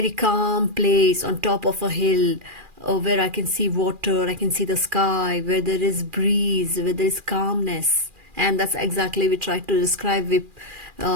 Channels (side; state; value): left; late; 2.4 ms